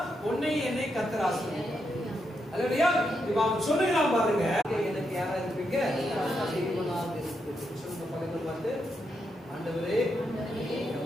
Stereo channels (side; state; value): both; normal; correlation 0.82